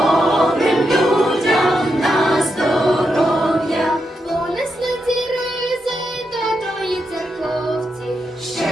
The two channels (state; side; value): normal; both; correlation 0.84